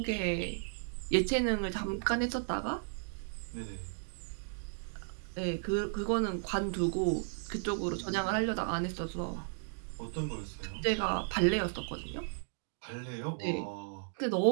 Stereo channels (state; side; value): silent; left; digital silence